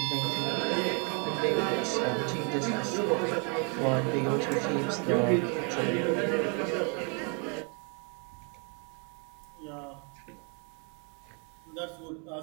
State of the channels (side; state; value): left; quieter; 36.9 dB